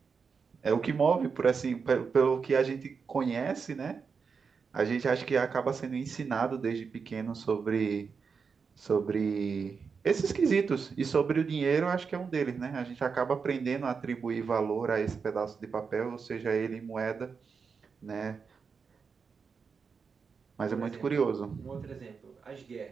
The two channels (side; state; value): left; quieter; 5.6 dB